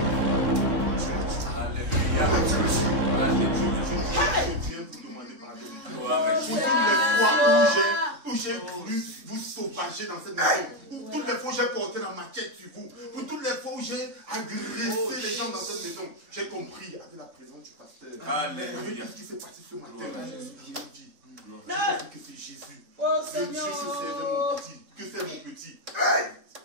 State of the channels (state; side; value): late; left; 3.6 ms